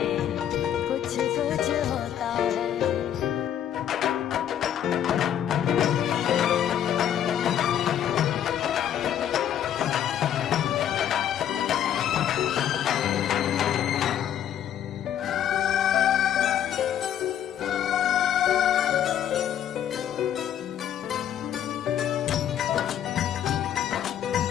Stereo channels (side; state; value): right; quieter; 10.2 dB